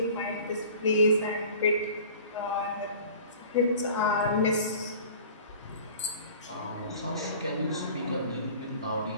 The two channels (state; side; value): inverted; both; correlation -0.44